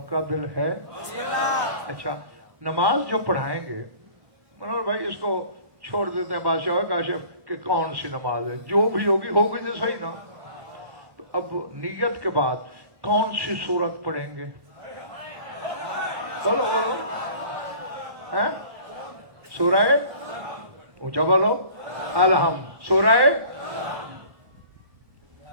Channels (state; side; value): late; left; 1.2 ms